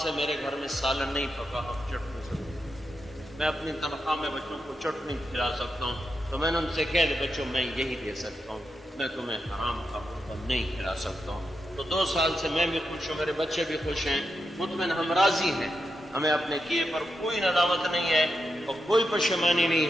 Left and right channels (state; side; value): normal; both; correlation 0.86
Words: سے میرے گھر میں سالن نہیں پکا, ہم چٹنی سکتے, میں اپنی تنخواہ میں بچوں کو چٹنی کھلا سکتا ہوں. تو میں نے ان سے کہہ دیا بچوں میں یہی دے سکتا ہوں, میں تمہیں حرام کا حکم نہیں کھلا سکتا ہوں. تو 2 سال سے میں بھی خوش ہوں, میرے بچے بھی خوش ہیں, مطمئن, ہم راضی ہیں. ہمیں اپنے کیے پر کوئی ندامت نہیں ہے اور کوئی پشیمانی